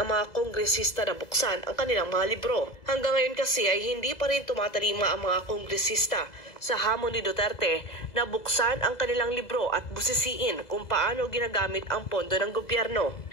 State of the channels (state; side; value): late; right; 2.0 ms